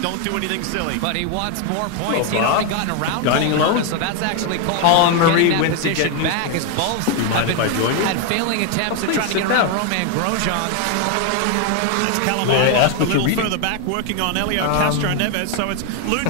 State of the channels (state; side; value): different; both; correlation 0.01